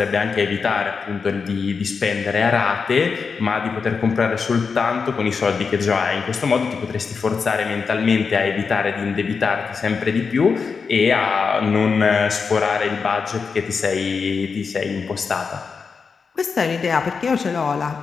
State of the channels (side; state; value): right; quieter; 5.3 dB